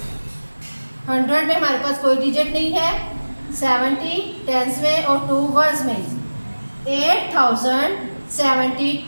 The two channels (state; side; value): inverted; both; correlation -1.00